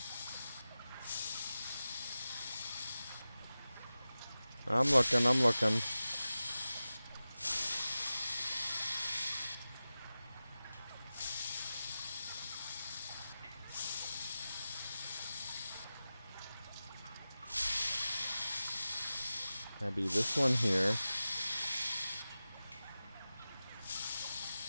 I'm looking. That'd be this one here.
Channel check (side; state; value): both; inverted; correlation -0.95